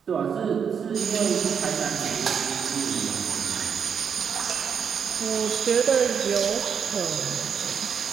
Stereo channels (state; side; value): quieter; left; 7.1 dB